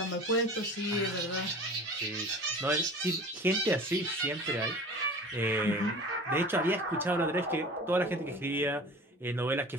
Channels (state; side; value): normal; both; correlation 0.39